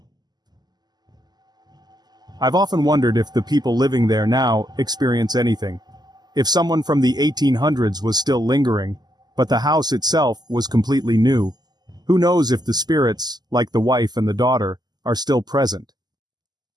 I've often wondered if the people living there now experience anything. If someone from the 1800s was still lingering, but the house itself was completely new. Who knows if the spirits, like the wife and the daughter, are still present.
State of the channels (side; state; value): left; late; 0.20 ms